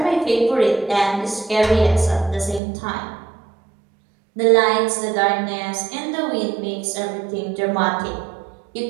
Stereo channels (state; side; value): drops out; left; at 2.6 s